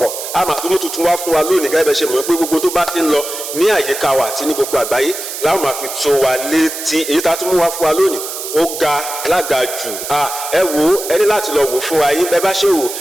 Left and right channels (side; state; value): right; noise; hiss, 7 dB below the sound